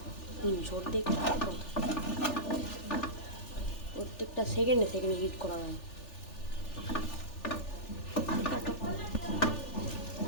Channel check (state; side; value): late; right; 3.4 ms